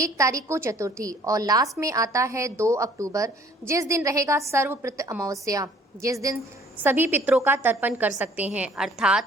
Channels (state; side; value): normal; both; correlation 0.57